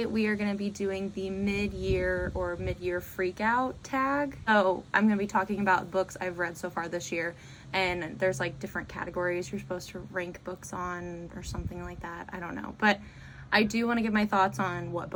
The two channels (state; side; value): identical; both; correlation 1.00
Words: we are going to be doing the mid-year freak out tag. So I'm going to be talking about books I've read so far this year, and there's like different categories you're supposed to rank books on or something like that. I don't know, but I do want to give my thoughts on what